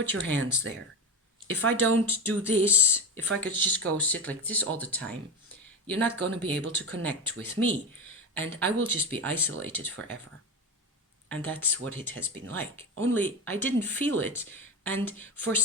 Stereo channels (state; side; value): normal; both; correlation 0.19